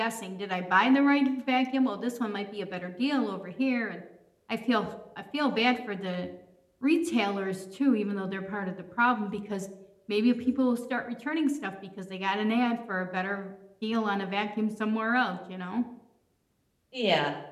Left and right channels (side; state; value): both; identical; correlation 1.00